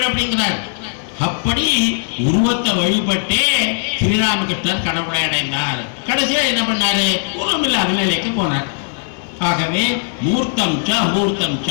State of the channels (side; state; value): right; silent; 67 dB below the other